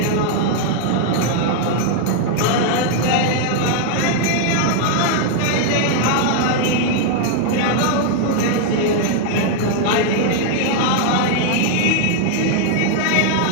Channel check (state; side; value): different; both; correlation 0.00